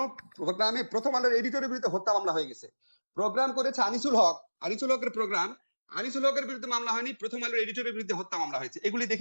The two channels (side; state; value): both; inverted; correlation -1.00